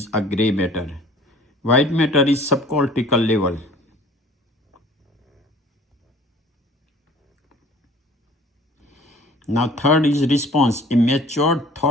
a gray matter. White matter is subcortical level. Now third is response, a matured,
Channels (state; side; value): normal; both; correlation 0.50